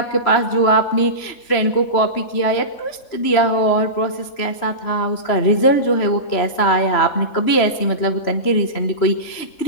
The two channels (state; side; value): late; right; 3.1 ms